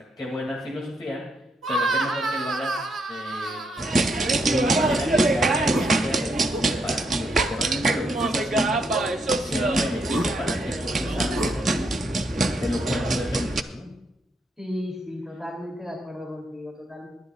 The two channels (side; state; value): both; normal; correlation 0.77